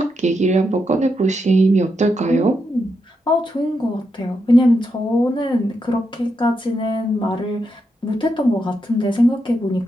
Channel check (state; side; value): normal; both; correlation 0.83